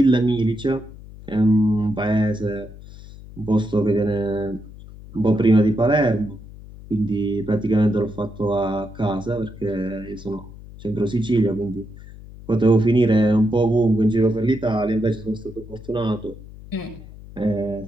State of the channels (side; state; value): left; noise; hum, 17 dB below the sound